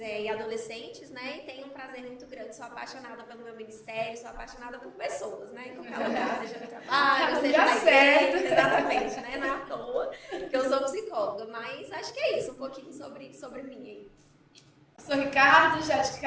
adolescentes, né? E tenho um prazer muito grande, sou apaixonada pelo meu ministério, sou apaixonada por pessoas, né? Em qualquer lugar, seja no trabalho, seja na igreja, exatamente, né? Não é à toa que eu sou psicóloga, mas acho que é isso, um pouquinho sobre mim aí. Sou Ricardo, já de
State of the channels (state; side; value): identical; both; correlation 1.00